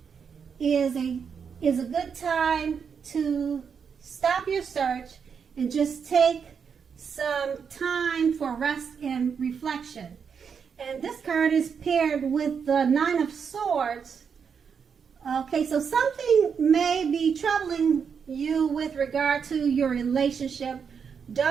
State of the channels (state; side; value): quieter; left; 6.6 dB